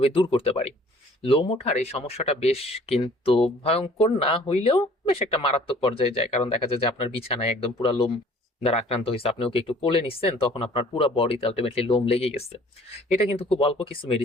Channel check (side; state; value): both; normal; correlation 0.54